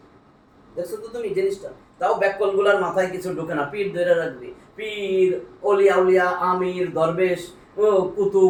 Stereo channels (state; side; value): identical; both; correlation 1.00